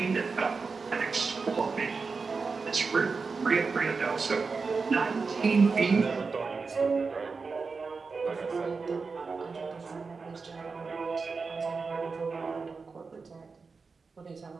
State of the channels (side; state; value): left; quieter; 4.6 dB